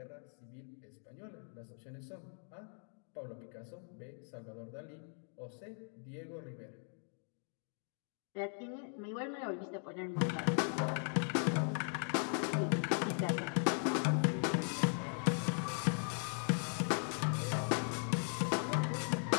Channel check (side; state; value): right; silent; 52 dB below the other